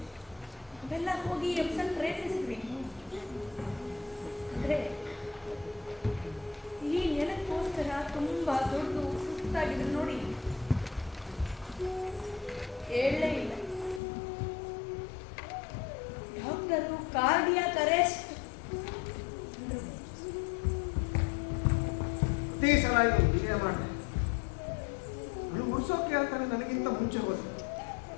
ಅವೆಲ್ಲ ಹೋಗಿ ಎಪ್ಸನ್ ಪ್ರಯತ್ನಿಸಿದ್ವಿ. ಅಂದ್ರೆ ಈ ನೆಲಕ್ಕೋಸ್ಕರ ತುಂಬಾ ದೊಡ್ಡ ಸುಸ್ತಾಗಿದ್ರು ನೋಡಿ, ಹೇಳಲೇ ಇಲ್ಲ. ಡಾಕ್ಟರು ಕಾರ್ಡಿಯಾಕ್ ಅರೆಸ್ಟ್ ಪ್ರತಿ ಸಲ ಹೀಗೆ ಮಾಡಿದೆ. ಅವಳು ಉಡ್ಸೋಕೆ ಹೇಳ್ತಾನೆ ನನಗಿಂತ ಮುಂಚೆ ಹೋದ.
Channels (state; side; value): drops out; right; at 14.0 s